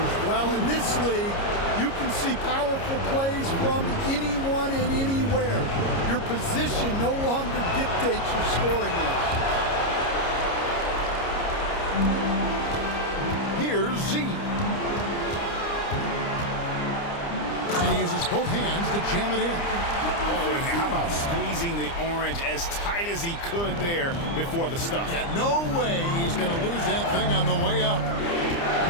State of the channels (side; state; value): right; late; 29 ms